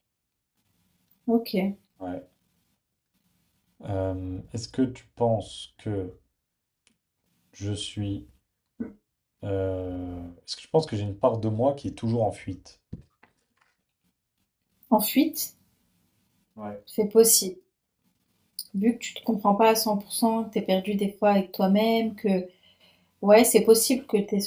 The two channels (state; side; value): identical; both; correlation 1.00